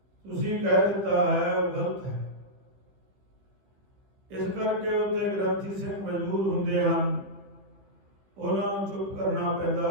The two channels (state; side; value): late; left; 15 ms